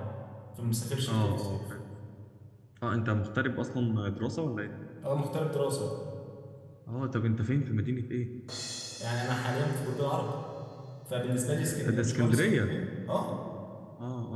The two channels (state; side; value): identical; both; correlation 1.00